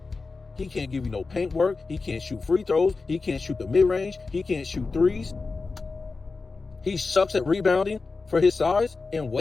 He can't give you no paint work. He can't shoot free throws. He can't shoot the mid-range. He can't shoot threes. He sucks at rebounding for his size and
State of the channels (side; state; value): right; quieter; 4.1 dB